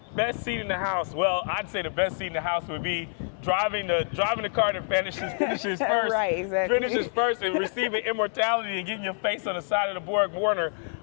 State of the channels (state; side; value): silent; right; 58 dB below the other